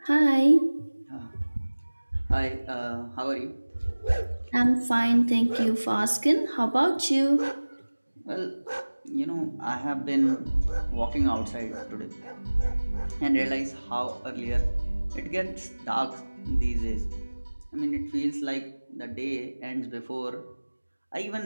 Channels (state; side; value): inverted; both; correlation -1.00